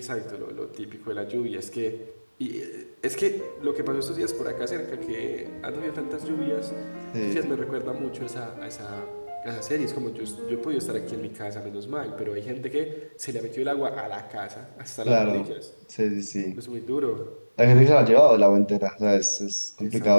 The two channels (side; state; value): both; inverted; correlation -1.00